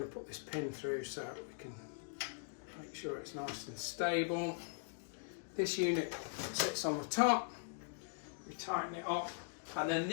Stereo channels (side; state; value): right; silent; digital silence